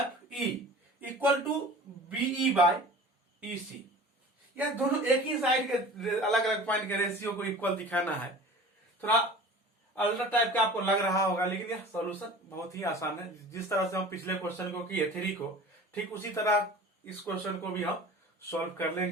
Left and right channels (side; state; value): both; normal; correlation 0.41